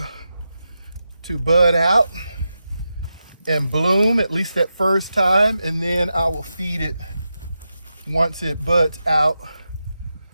bud out and bloom at least that first time, and then I will feed it once it buds out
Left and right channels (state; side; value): inverted; both; correlation -0.89